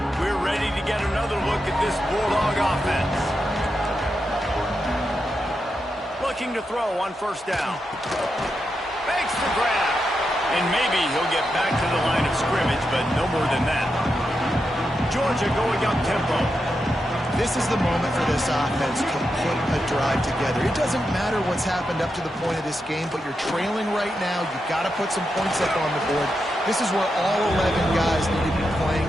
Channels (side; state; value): both; normal; correlation 0.86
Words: We're ready to get another look at this Bulldog offense. Looking to throw on first down. Makes the grab. And maybe he'll get back to the line of scrimmage, but no more than that. Georgia going up tempo. This is the moment for this offense to put a drive together. It doesn't matter what's happened up to the point of this game, but you're trailing right now. You've got to put some points up on the board. This is where all 11 guys need to be playing